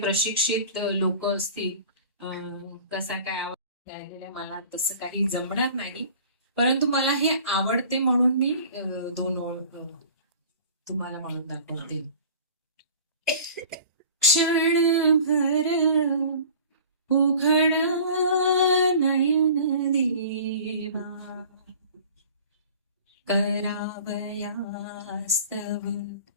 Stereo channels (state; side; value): inverted; both; correlation -0.44